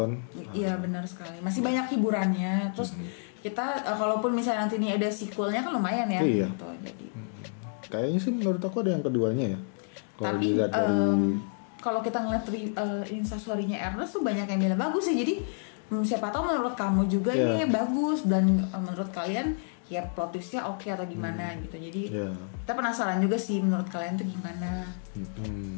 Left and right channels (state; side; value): silent; right; 58 dB below the other